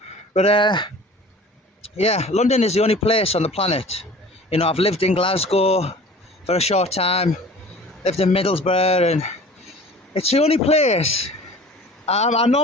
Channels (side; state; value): both; normal; correlation 0.44